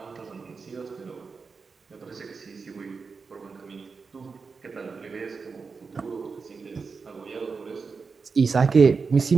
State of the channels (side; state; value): left; quieter; 4.9 dB